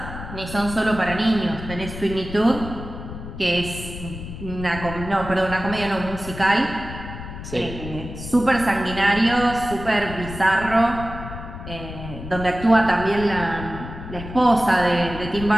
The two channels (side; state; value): left; noise; rumble, 10 dB below the sound